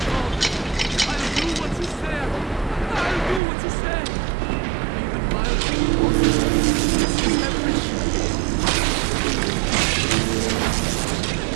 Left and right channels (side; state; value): left; drops out; at 3.4 s